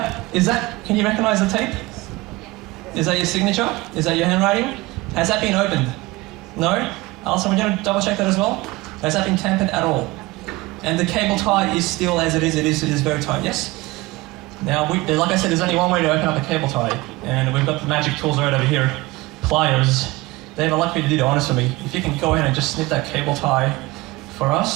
can you recognize the tape? Is that your signature? Is that your handwriting? Has that been opened? No? Alison, would you double check that as well? Has that been tampered at all? And the cable tie is still as it is. It is very tight, yes? Now, like I said, there's only one way to open up a cable tie, and we've got the magic tools right over here. Pliers. Dave, I'd like you to do the honors for me. If you can go ahead and just snip that cable tie for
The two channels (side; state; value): left; quieter; 21.2 dB